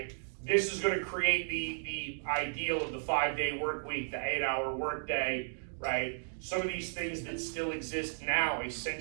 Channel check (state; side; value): silent; left; digital silence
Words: This is going to create the ideal of the 5-day work week, the 8-hour work day, right? Some of these things that still exist now, a